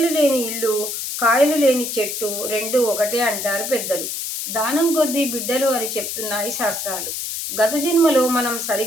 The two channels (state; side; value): noise; left; hiss, 4 dB below the sound